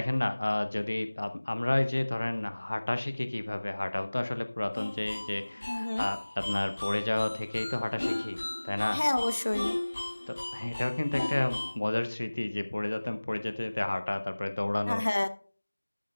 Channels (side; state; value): both; inverted; correlation -1.00